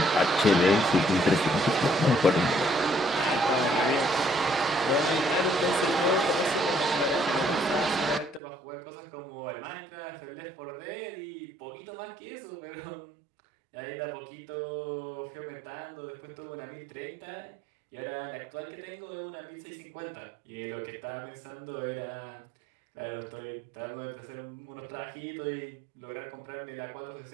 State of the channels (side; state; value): left; drops out; at 8.4 s